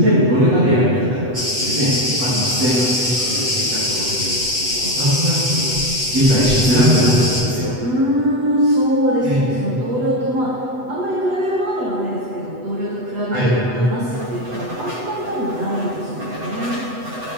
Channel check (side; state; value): left; late; 8.0 ms